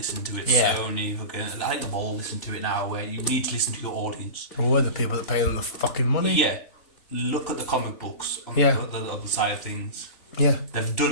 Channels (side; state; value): right; late; 3.4 ms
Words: to it. Yeah. Sony, I think they've all listened to it now, where you need to listen to your audience. We're the people that pay them the fucking money. Yeah. Look at the comic books on Yeah. the other side of things. Yeah. They've